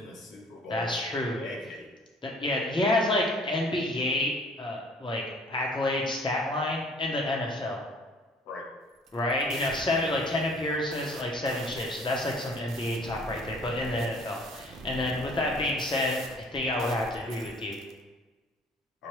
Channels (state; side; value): normal; both; correlation 0.54